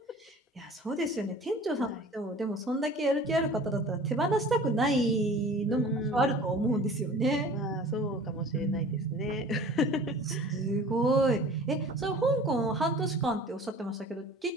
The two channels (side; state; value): both; normal; correlation 0.44